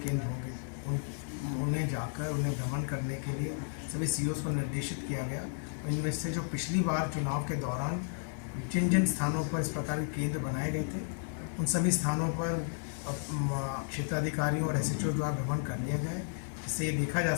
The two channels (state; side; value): silent; right; 56 dB below the other